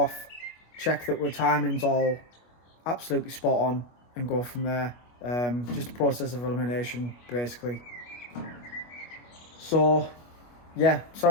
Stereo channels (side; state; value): right; late; 25 ms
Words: check that our timing's all absolutely spot on, and go from there. Just a process of elimination basically. So yeah,